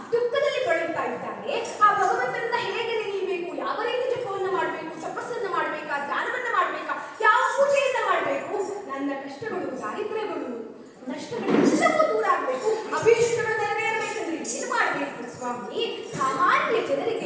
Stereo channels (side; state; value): both; identical; correlation 1.00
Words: ದುಃಖದಲ್ಲಿ ಬಳಲ್ತಾ ಇದ್ದಾರೆ. ಆ ಭಗವಂತನನ್ನ ಹೇಗೆ ನೆನೆಯಬೇಕು, ಯಾವ ರೀತಿ ಜಪವನ್ನ ಮಾಡಬೇಕು, ತಪಸ್ಸನ್ನ ಮಾಡ್ಬೇಕಾ, ಧ್ಯಾನವನ್ನ ಮಾಡ್ಬೇಕಾ, ಯಾವ ಪೂಜೆಯನ್ನ ಮಾಡಬೇಕು, ನನ್ನ ಕಷ್ಟಗಳು, ದಾರಿದ್ರ್ಯಗಳು, ನಷ್ಟಗಳೆಲ್ಲವೂ ದೂರ ಆಗ್ಬೇಕು, ಅಭೀಷ್ಟಗಳು ನೆರವೇರಬೇಕಂದ್ರೆ ಏನ್ ಮಾಡ್ಬೇಕು ಸ್ವಾಮಿ, ಸಾಮಾನ್ಯ